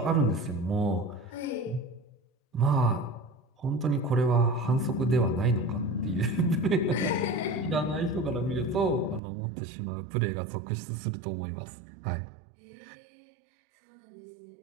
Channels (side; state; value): left; drops out; at 9.2 s